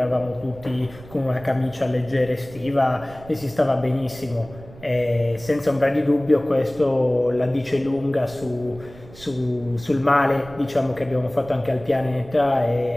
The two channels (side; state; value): right; noise; rumble, 19 dB below the sound